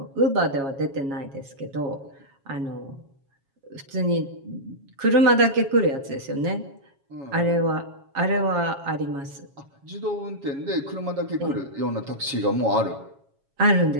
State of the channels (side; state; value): left; late; 7.3 ms